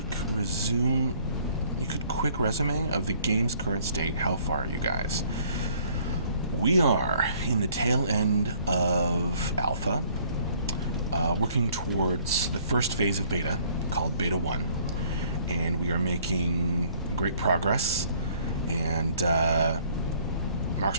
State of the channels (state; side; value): inverted; both; correlation -0.60